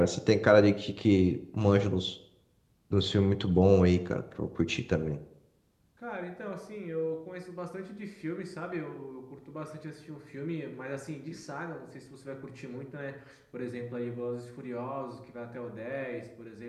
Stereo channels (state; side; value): identical; both; correlation 1.00